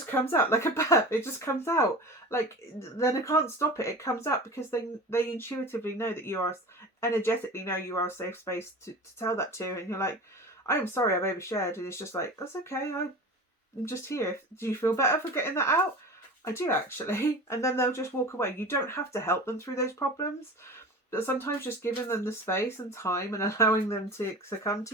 comes out like a burp. It just comes out. Like, then I can't stop it. It comes out because they intuitively know that you are, energetically know you are a safe space to tell that to. And you're like, I am sorry, I've overshared. And it's just like, that's okay. I'm just here. Do you feel better for getting that out? I do, actually. And then they'll just walk away. You don't have to help them through those problems. But sometimes just giving them the space and time and allowing them to come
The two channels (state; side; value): normal; both; correlation 0.34